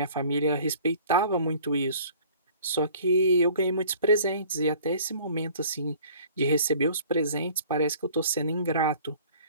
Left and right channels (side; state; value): both; inverted; correlation -0.50